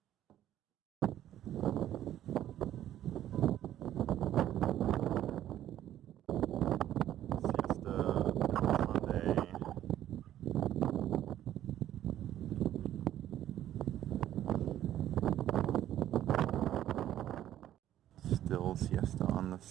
Still siesta on the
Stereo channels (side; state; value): left; quieter; 12.1 dB